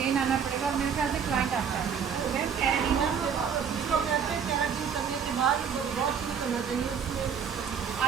आना पड़ेगा, और मेरे ख्याल से क्लाइंट आपका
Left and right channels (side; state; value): left; quieter; 7.1 dB